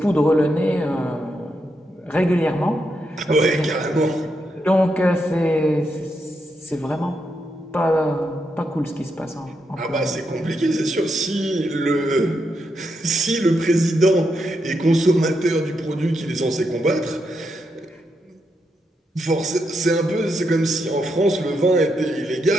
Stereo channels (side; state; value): both; normal; correlation 0.82